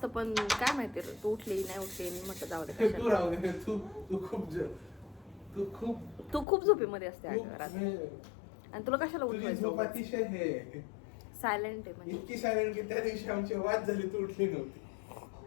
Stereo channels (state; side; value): drops out; right; at 6.5 s